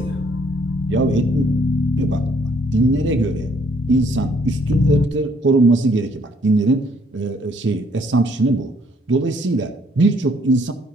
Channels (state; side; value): normal; both; correlation 0.65